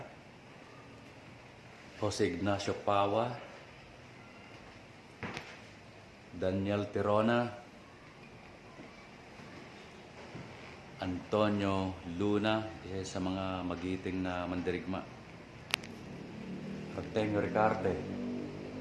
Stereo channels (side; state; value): both; identical; correlation 1.00